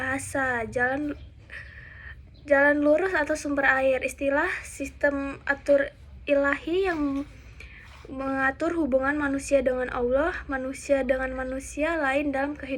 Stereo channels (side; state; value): both; identical; correlation 1.00